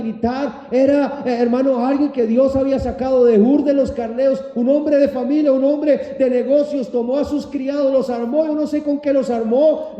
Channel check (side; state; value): both; identical; correlation 1.00